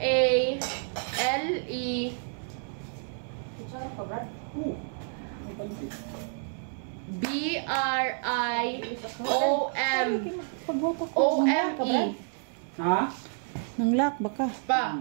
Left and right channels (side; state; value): left; silent; digital silence